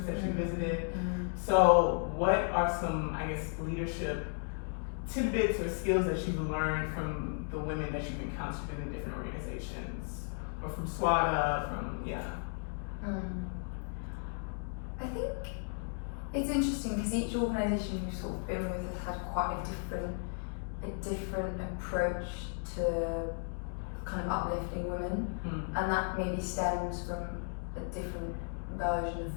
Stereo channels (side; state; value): right; silent; 55 dB below the other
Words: that you visited. So what are some, I guess, leadership tidbits or skills that you've learned from the women that you've encountered in the different organizations, or from Swara, I think it's interesting because each organisation you've sort of been with has had quite a different approach to kind of uplifting women, and that maybe stems from a different version of